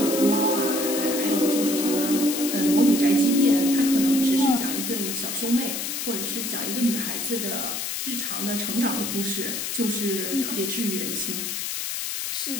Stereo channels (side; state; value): left; noise; hiss, 3 dB below the sound